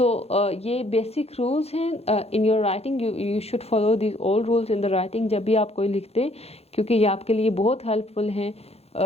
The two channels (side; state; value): right; late; 0.30 ms